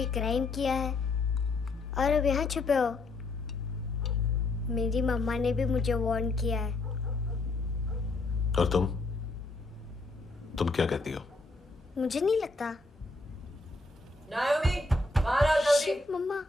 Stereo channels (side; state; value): right; quieter; 3.2 dB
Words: क्राइम किया है और अब यहाँ छुपे हो। मेरी मम्मा ने भी मुझे वार्न किया है। और तुम क्या कहती हो? मुझे नहीं लगता। नायोमी, बाहर आओ जल्दी। शिट, मम्मा